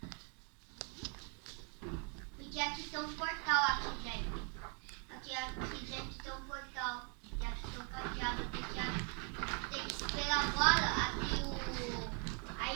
Porque aqui tem um portal aqui dentro. Aqui dentro tem um portal. E aqui tem um cadeado. Tem que esperar agora abrir a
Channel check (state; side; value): quieter; left; 38.0 dB